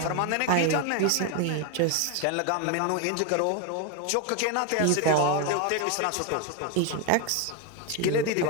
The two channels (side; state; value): both; different; correlation 0.01